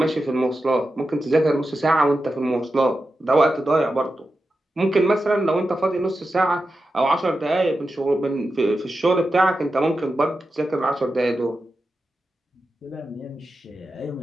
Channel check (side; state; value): both; normal; correlation 0.91